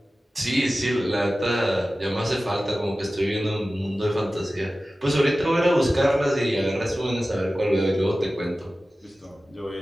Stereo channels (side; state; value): both; normal; correlation 0.95